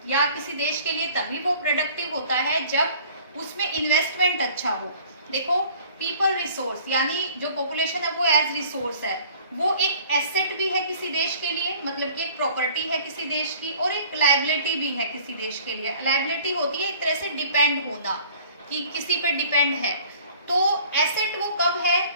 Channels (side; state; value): both; inverted; correlation -0.51